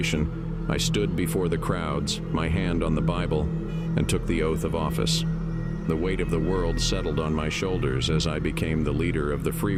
I stood before the crowds, my hand on the Bible, and took the oath of office. The weight of the world settled on my shoulders as I became the leader of the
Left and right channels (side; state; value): both; identical; correlation 1.00